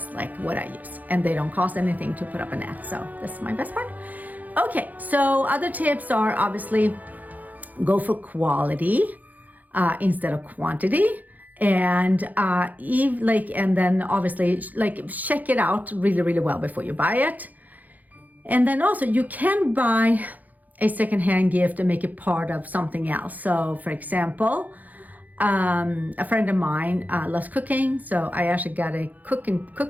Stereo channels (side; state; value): left; late; 0.081 ms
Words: like what I use, and they don't cost anything to put up an ad, so that's my best part. Okay, so other tips are obviously go for quality instead of quantity, and and then obviously check it out really, really well before you buy it. And then also you can buy a secondhand gift and make it part of something else. So for example, a friend of mine loves cooking, so I actually got a